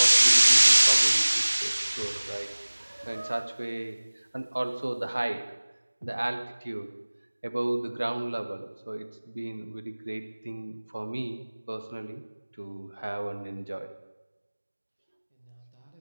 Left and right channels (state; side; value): inverted; both; correlation -1.00